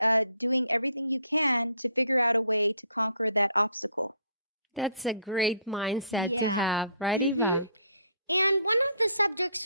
everything you can to figure out a way to conquer that obstacle. That's a great mindset. Yeah. To have, right? Mm-hmm. And one of the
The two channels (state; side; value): inverted; both; correlation -0.62